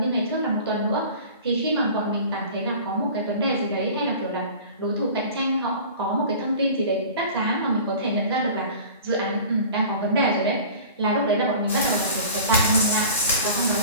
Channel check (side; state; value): both; inverted; correlation -0.41